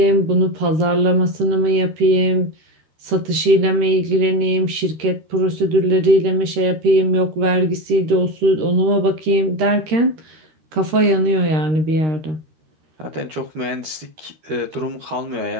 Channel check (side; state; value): left; late; 13 ms